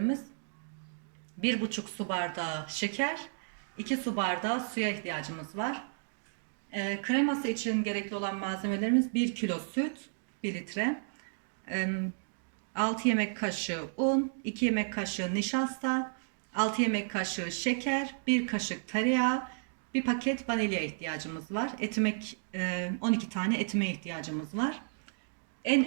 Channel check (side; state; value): left; silent; digital silence